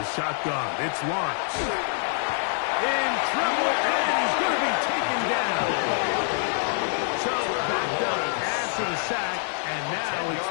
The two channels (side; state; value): right; silent; 56 dB below the other